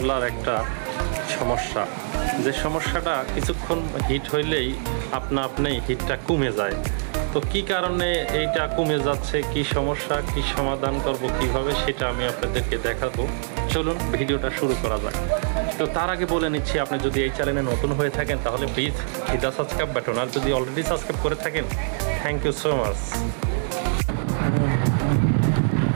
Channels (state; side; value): silent; left; digital silence